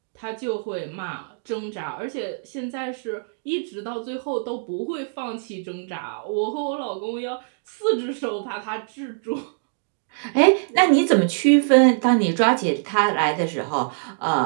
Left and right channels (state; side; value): silent; left; digital silence